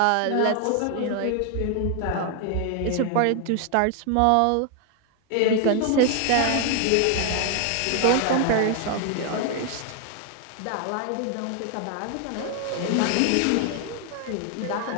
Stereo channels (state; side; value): different; both; correlation 0.00